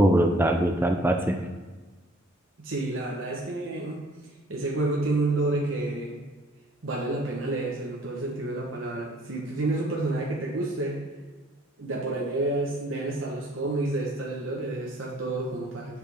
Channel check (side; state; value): both; normal; correlation 0.58